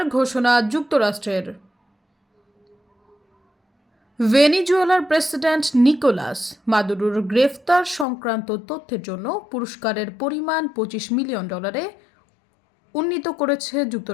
ঘোষণা যুক্তরাষ্ট্রের। ভেনেজুয়েলার প্রেসিডেন্ট নিকোলাস মাদুরোর গ্রেফতার সংক্রান্ত তথ্যের জন্য পুরস্কারের পরিমাণ $25 মিলিয়ন উন্নীত করেছে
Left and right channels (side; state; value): right; drops out; at 8.1 s